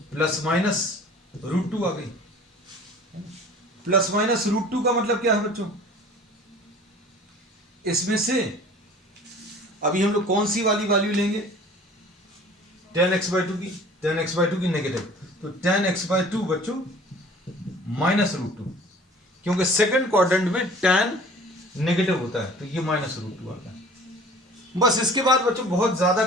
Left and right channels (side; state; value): both; normal; correlation 0.47